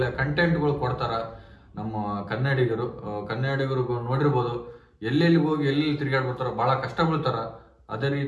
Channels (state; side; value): identical; both; correlation 1.00